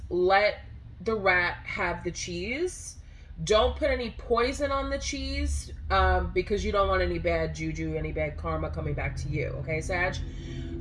let the rat have the cheese. Don't put any poison on the cheese, because you don't want any bad juju, any bad karma coming back to you. Okay, Sag?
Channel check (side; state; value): both; identical; correlation 1.00